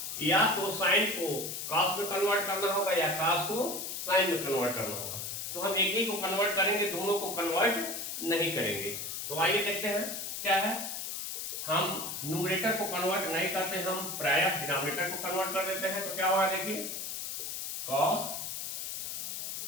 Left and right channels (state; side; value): noise; left; hiss, 5 dB below the sound